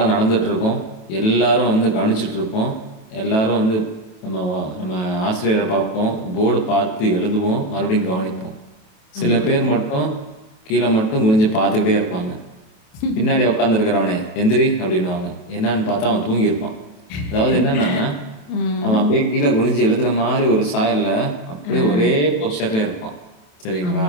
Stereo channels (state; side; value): late; right; 28 ms